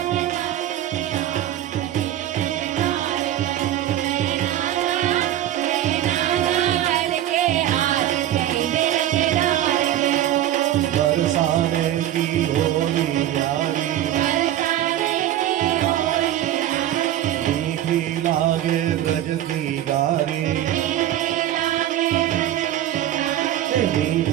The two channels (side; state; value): left; quieter; 12.4 dB